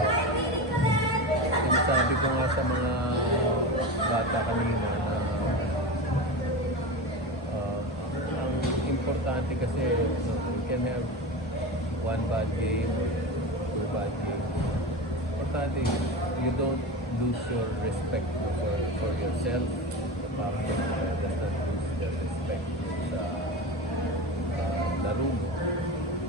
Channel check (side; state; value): both; normal; correlation 0.25